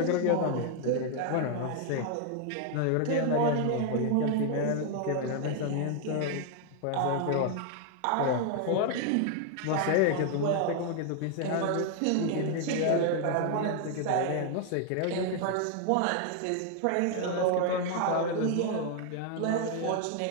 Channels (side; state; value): both; different; correlation 0.00